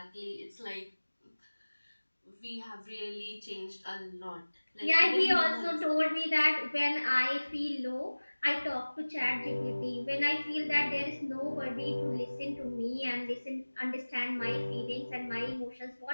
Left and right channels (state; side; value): inverted; both; correlation -1.00